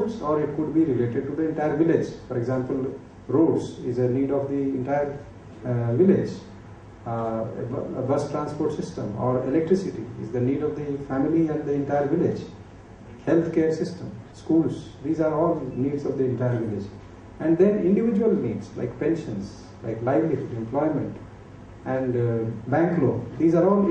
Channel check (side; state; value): both; identical; correlation 1.00